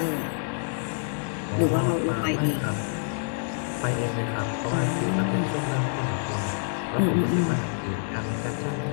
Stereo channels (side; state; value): right; silent; digital silence